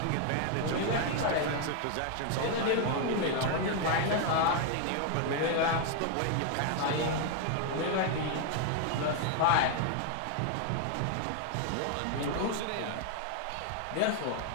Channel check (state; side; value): different; both; correlation 0.00